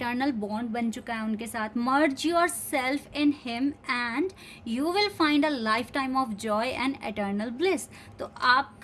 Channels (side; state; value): both; identical; correlation 1.00